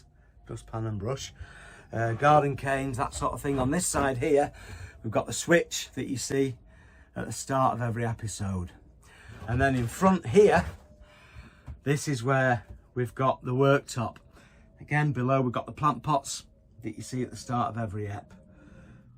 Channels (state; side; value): identical; both; correlation 1.00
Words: dustpan and brush, garden canes, that sort of thing. On this side here, we've got the switch that you see at the start of every episode. And then in front here, this is where we've got the worktop. Again, below we've got the plant pots that you see at the start of every ep.